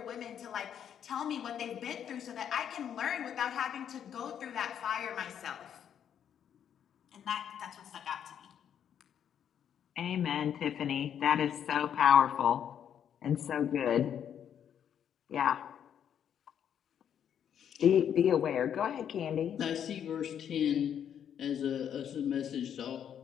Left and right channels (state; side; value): quieter; right; 9.0 dB